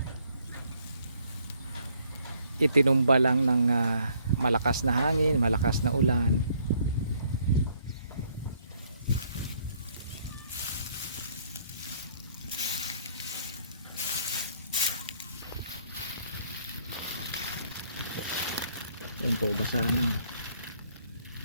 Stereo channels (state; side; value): inverted; both; correlation -0.66